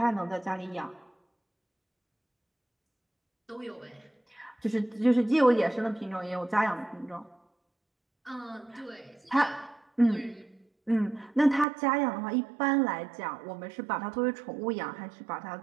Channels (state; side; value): drops out; left; at 11.7 s